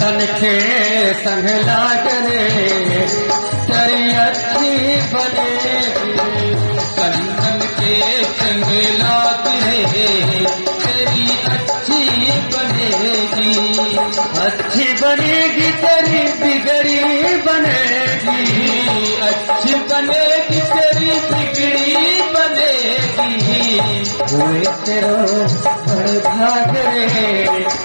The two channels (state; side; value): inverted; both; correlation -1.00